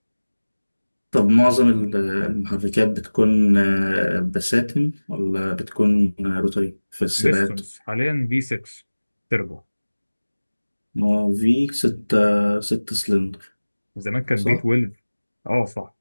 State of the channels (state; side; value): inverted; both; correlation -1.00